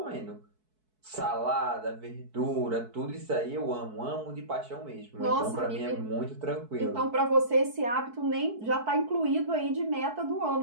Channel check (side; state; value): left; late; 4.6 ms